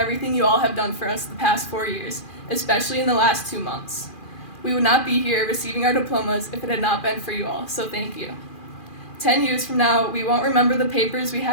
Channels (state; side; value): late; right; 2.4 ms